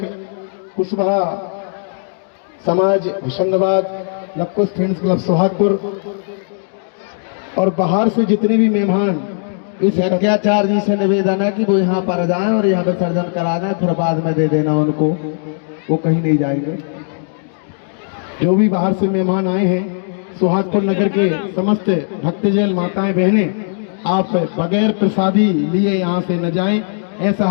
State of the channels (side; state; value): right; silent; digital silence